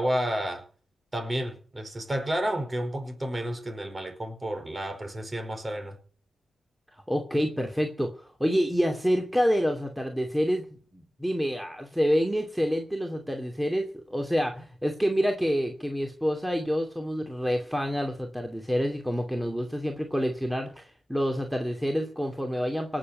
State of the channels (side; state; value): both; normal; correlation 0.96